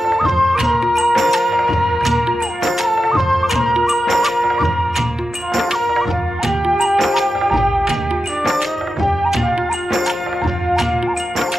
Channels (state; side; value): normal; both; correlation 0.91